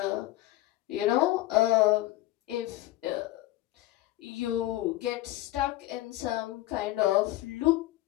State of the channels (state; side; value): quieter; right; 16.4 dB